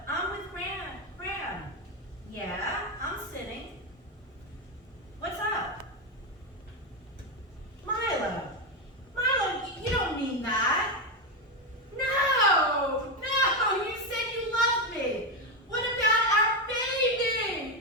I'm with Graham. Yeah, I'm sitting. What's up? Milo, you don't mean that. No, you said you loved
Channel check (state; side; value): normal; both; correlation 0.10